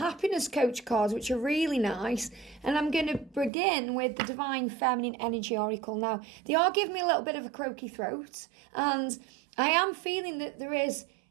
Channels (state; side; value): drops out; left; at 3.5 s